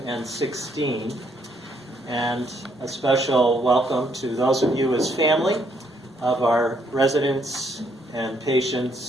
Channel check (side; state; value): both; normal; correlation 0.71